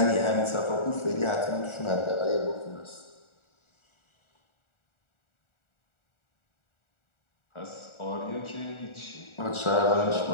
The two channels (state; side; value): late; right; 1.4 ms